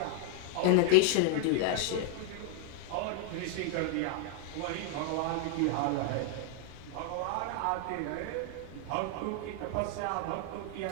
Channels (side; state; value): both; different; correlation 0.00